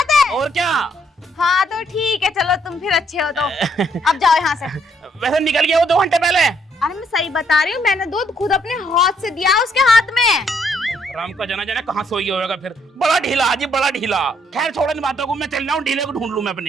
है? और क्या। हाँ तो ठीक है, चलो तुम फिर अच्छे हो तो अब जाओ यहाँ से। वैसे निकल गया वो 2 घंटे पहले। अरे मैं सही बता रही हूँ, मैंने दूध खुद अपने हाथ से दिया उसके हाथ में। राम का जना जना कहाँ सोई होगा फिर, बड़ा ढीला जी, बड़ा ढीला। खैर छोड़ो इन बातों को, मैं चल रहा हूँ, ढीले को ढूंढ लूं मैं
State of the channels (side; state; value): both; normal; correlation 0.70